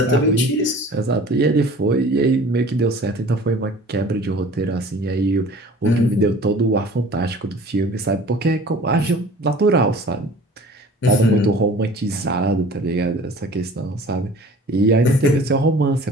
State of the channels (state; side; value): normal; both; correlation 0.46